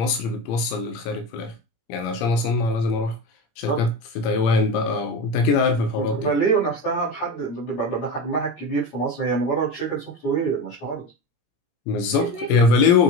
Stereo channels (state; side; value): late; right; 17 ms